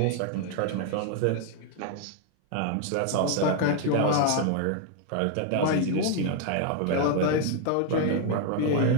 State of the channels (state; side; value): different; both; correlation 0.00